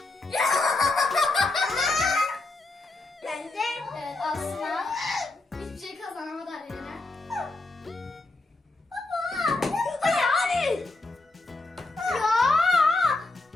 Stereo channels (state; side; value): quieter; right; 3.1 dB